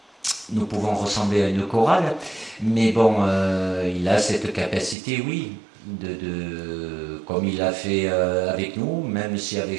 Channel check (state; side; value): drops out; left; at 5.0 s